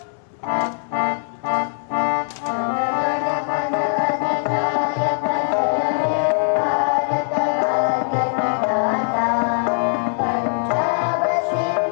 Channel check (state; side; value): silent; right; 63 dB below the other